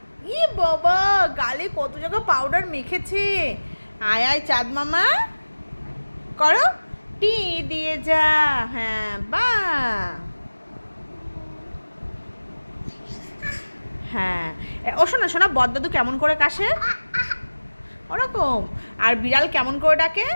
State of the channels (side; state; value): both; inverted; correlation -1.00